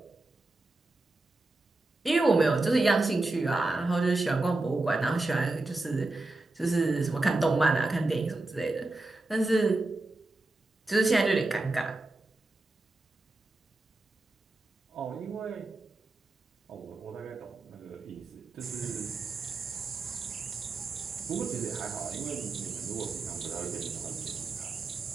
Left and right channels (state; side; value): quieter; left; 3.1 dB